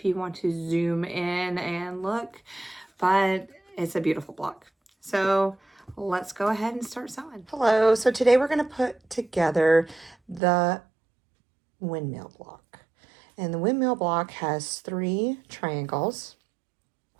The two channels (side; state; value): left; drops out; at 10.4 s